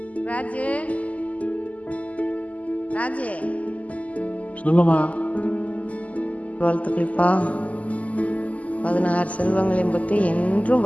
ராஜு ராஜு சொல்லுமா. வாழ்த்துக்கள்ப்பா. 16 செல்வங்களையும் பற்றி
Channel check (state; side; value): late; right; 0.072 ms